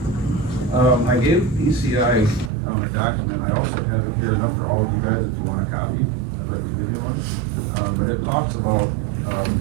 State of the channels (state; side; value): drops out; left; at 2.5 s